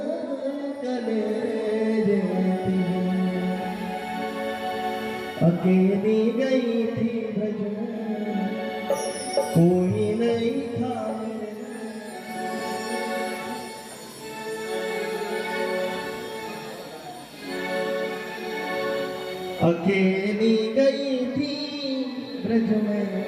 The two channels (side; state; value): both; identical; correlation 1.00